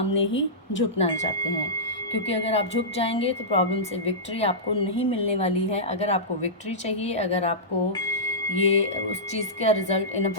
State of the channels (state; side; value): normal; both; correlation -0.16